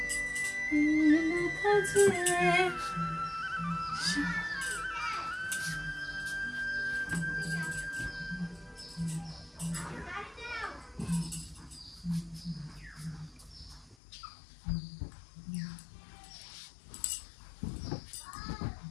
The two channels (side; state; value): right; drops out; at 14.0 s